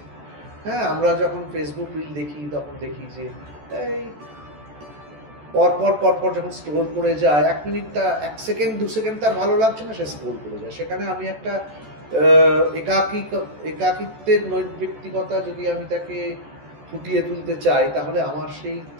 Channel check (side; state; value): left; late; 14 ms